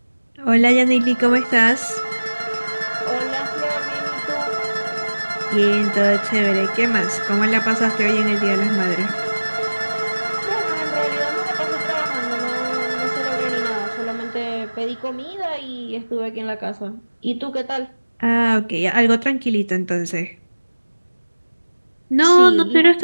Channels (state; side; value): inverted; both; correlation -1.00